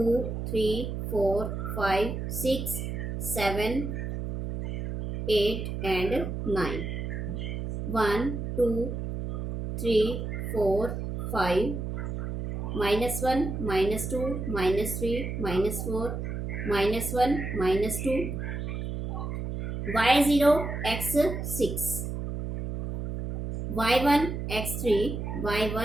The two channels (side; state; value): right; noise; hum, 4 dB below the sound